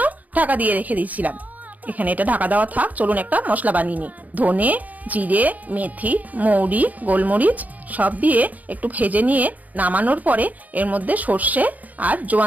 ঢাকা দিয়ে রেখে দিয়েছিলাম। এখানে এটা ঢাকা দেওয়া থাক, চলুন একটা মশলা বানিয়ে নিই। ধনে, জিরে, মেথি, মৌরি, গোলমরিচ সব দিয়ে একটু ভেজে নিয়ে নামানোর পরে এর মধ্যে সর্ষে আর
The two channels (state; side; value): late; left; 0.078 ms